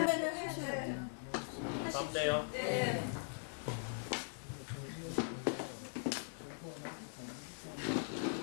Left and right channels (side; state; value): right; silent; digital silence